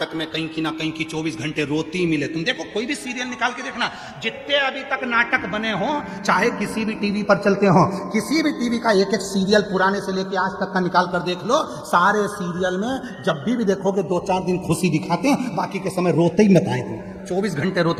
में कहीं की ना कहीं की 24 घंटे रोती मिले। तुम देखो कोई भी सीरियल निकाल के देखना, जितने अभी तक नाटक बने हो, चाहे किसी भी टीवी पर चलते हो, किसी भी टीवी का एक एक सीरियल पुराने से लेके आज तक का निकाल कर देख लो, सारे सीरियल में जब भी देखोगे 2-4 दिन खुशी दिखाते हैं, बाकी के समय रोते ही बताएंगे, 24 घंटे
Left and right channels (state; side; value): identical; both; correlation 1.00